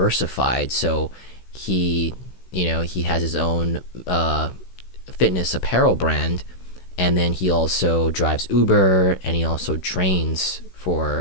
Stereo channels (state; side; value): late; right; 16 ms